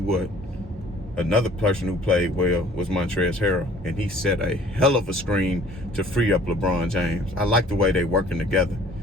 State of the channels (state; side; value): normal; both; correlation 0.54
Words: what, another person who played well was Montrezl Harrell, and he set a hell of a screen to free up LeBron James. I like the way they working together.